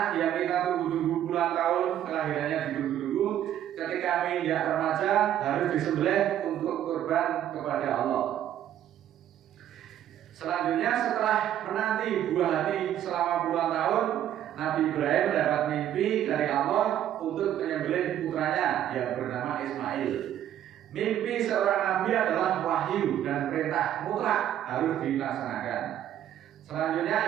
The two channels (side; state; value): left; quieter; 11.2 dB